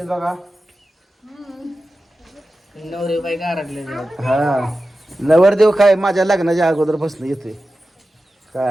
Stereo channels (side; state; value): both; normal; correlation 0.93